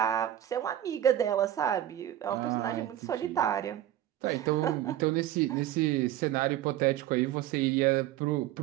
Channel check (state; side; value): quieter; left; 12.5 dB